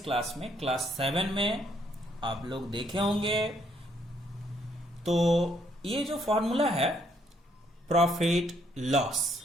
क्लास में क्लास 7 में आप लोग देखे होंगे। तो ये जो फॉर्मूला है प्रॉफिट लॉस,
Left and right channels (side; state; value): both; normal; correlation 0.70